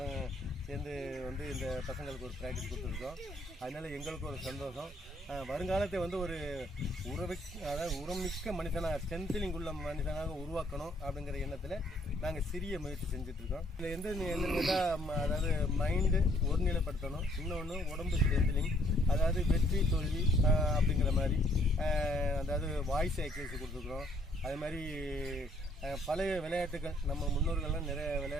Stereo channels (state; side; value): normal; both; correlation 0.65